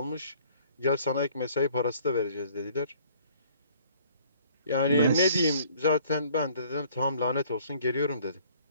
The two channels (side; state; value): both; inverted; correlation -0.57